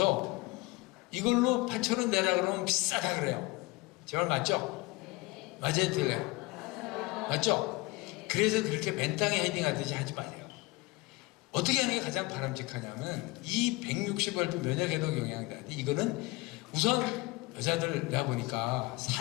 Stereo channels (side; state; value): right; quieter; 23.2 dB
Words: 이걸로 8,000원 내라 그러면 비싸다 그래요. 제 말 맞죠? 맞아요, 틀려요? 맞죠? 그래서 그렇게 맨땅에 헤딩하듯이 하지 마세요. 어떻게 하는 게 가장 바람직하냐면 이 160알프 면역해독 영양제 이거는 우선 여자들 내가 보니까